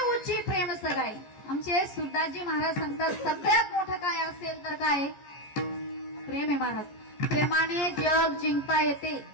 आमचे सुरदासजी महाराज सांगतात सगळ्यात मोठं काय असेल तर काय, प्रेम आहे महाराज. प्रेमाने जग जिंकता येते.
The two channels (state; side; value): late; right; 14 ms